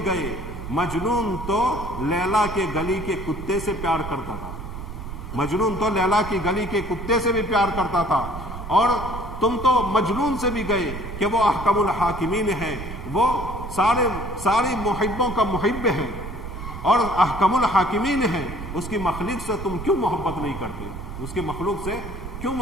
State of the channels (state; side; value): noise; right; rumble, 9 dB below the sound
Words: گئے، مجنون تو لیلا کے گلی کے کتے سے پیار کرتا تھا، مجنون تو لیلا کی گلی کے کتے سے بھی پیار کرتا تھا، اور تم تو مجنون سے بھی گئے کہ وہ احکم الحاکمین ہے، وہ سارے محبوں کا محب ہے اور احکم الحاکمین ہے، اس کی مخلوق سے تم کیوں محبت نہیں کرتے، اس کی مخلوق سے کیوں